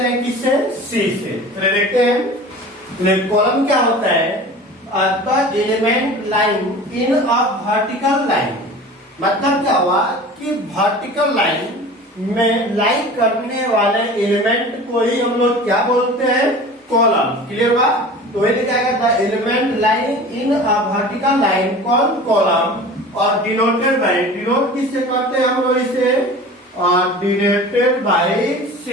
हैं किससे, सी से। चलिए देखते हैं कॉलम क्या होता है, the element line in a vertical line. मतलब क्या हुआ कि वर्टिकल लाइन में लाइन करने वाले एलिमेंट को ही हम लोग क्या बोलते हैं, कॉलम। क्लियर हुआ? तो ये क्या कहता है, element line in a vertical line called column और डिनोटेड बाय, डिनोट किससे करते हैं हम लोग इसे, डिनोटेड बाय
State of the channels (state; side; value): normal; both; correlation 0.39